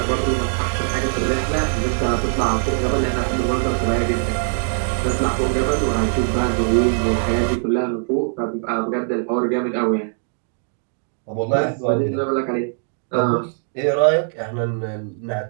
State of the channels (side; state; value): left; silent; 65 dB below the other